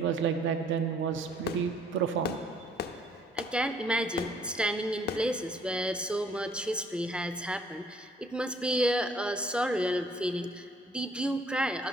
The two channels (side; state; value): both; normal; correlation 0.61